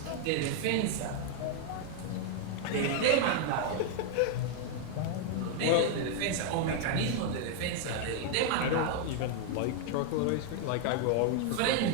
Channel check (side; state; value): both; different; correlation 0.00